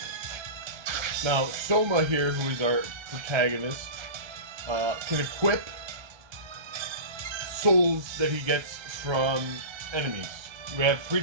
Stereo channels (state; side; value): late; left; 1.3 ms